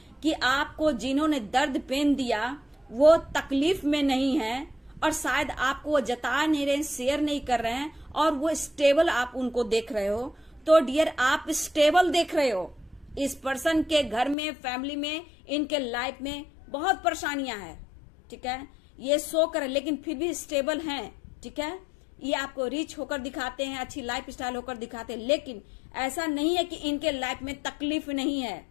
कि आपको जिन्होंने दर्द पेन दिया वो तकलीफ में नहीं है और शायद आपको वो जता नहीं रहे, शेयर नहीं कर रहे हैं और वो स्टेबल आप उनको देख रहे हो, तो डियर आप स्टेबल देख रहे हो। इस पर्सन के घर में, फैमिली में, इनके लाइफ में बहुत परेशानियां हैं, ठीक है, ये शो कर लेकिन फिर भी स्टेबल हैं, ठीक है। ये आपको रिच होकर दिखाते हैं, अच्छी लाइफ स्टाइल होकर दिखाते हैं, लेकिन ऐसा नहीं है कि इनके लाइफ में तकलीफ नहीं है,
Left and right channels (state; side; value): drops out; right; at 14.4 s